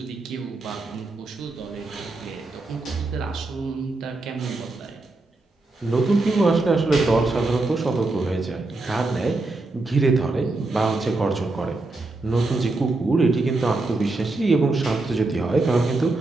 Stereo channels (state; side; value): quieter; left; 3.1 dB